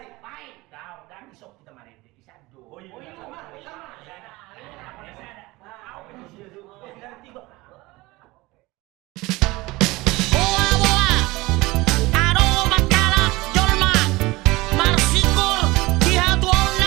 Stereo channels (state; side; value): quieter; left; 21.2 dB